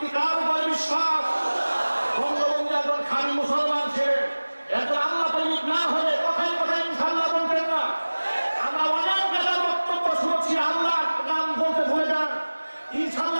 কার উপর বিশ্বাস? বঙ্গবন্ধু একজন খাঁটি মুসলমান ছিলেন, একজন আল্লাহ প্রেমিক না হলে কথায় কথায় ইনশাআল্লাহ বলতেন না। আমরা অনেক নেতার বক্তব্য শুনেছি, আল্লাহ নাম বলতে ভুলে যান,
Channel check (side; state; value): both; inverted; correlation -1.00